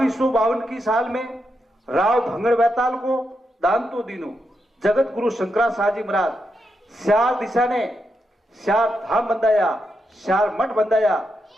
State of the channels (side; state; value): both; normal; correlation 0.84